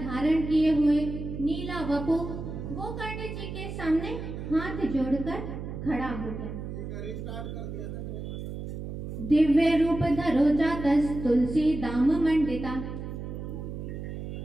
किए हुए, नीला वपु गोकर्ण जी के सामने हाथ जोड़कर खड़ा हो गया। दिव्य रूप धरो जातस तुलसी दाम मंडिता।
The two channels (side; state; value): right; noise; hum, 7 dB below the sound